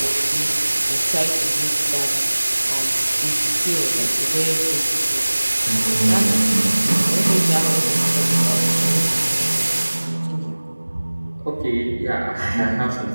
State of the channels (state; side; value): inverted; both; correlation -1.00